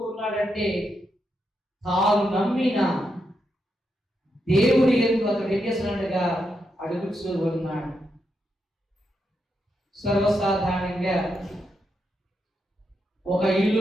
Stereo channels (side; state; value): both; normal; correlation 0.83